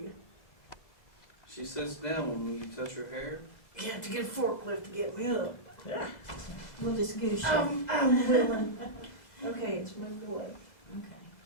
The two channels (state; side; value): late; right; 2.0 ms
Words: She sits down when you touch her hair. You have to get a forklift to get me up. Yeah. We'll just goose you. I'm willing. Okay, it's moved away. Okay.